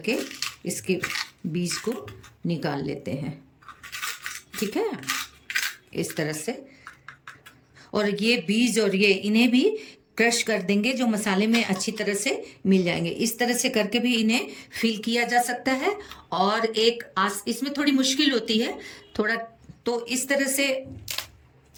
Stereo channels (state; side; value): identical; both; correlation 1.00